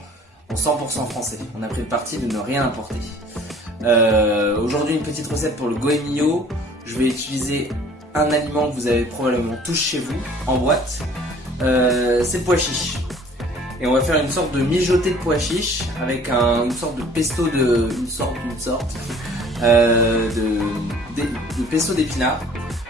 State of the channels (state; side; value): normal; both; correlation 0.52